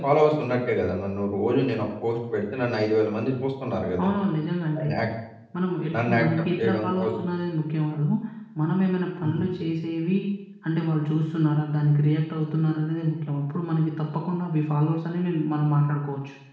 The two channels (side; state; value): both; identical; correlation 1.00